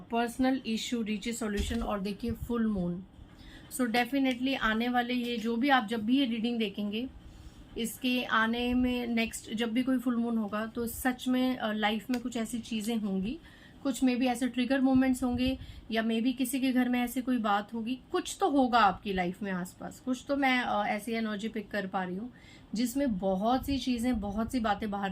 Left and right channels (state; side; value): identical; both; correlation 1.00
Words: personal issue reaches solution. और देखिए फुल मून। सो डेफिनेटली आने वाले ये जो भी आप जब भी ये रीडिंग देखेंगे, इसके आने में नेक्स्ट जब भी कोई फुल मून होगा तो सच में लाइफ में कुछ ऐसी चीजें होंगी, कुछ मे बी ऐसे ट्रिगर मोमेंट्स होंगे, या मे बी किसी के घर में ऐसी कोई बात होगी, कुछ तो होगा आपकी लाइफ में आसपास, कुछ तो मैं ऐसी एनर्जी पिक कर पा रही हूँ जिसमें बहुत सी चीजें, बहुत सी बातें बाहर